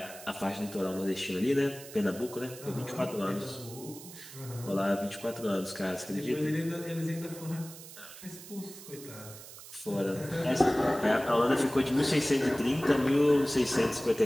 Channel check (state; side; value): noise; right; hiss, 15 dB below the sound